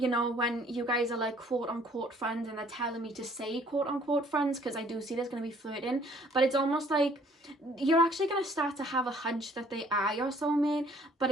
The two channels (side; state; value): both; normal; correlation 0.59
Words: know, when you guys are like quote unquote friends, and they're telling me to say quote unquote friends, because I do see there's going to be flirting, but it's almost like you're actually going to start to have a hunch that they are your soulmate, but